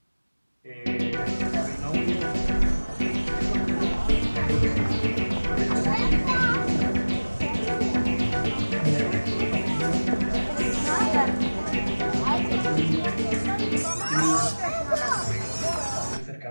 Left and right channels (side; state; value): both; inverted; correlation -1.00